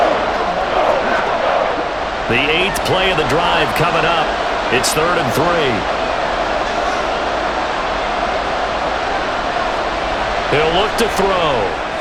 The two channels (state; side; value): identical; both; correlation 1.00